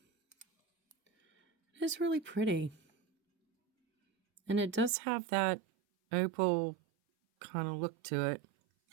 It is really pretty. And it does have that opal kind of look to it.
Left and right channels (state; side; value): drops out; left; at 4.9 s